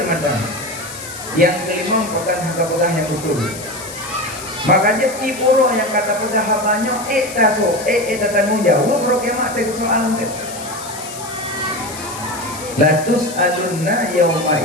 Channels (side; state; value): left; noise; hiss, 12 dB below the sound